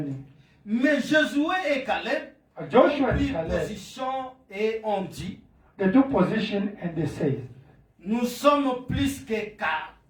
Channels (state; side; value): identical; both; correlation 1.00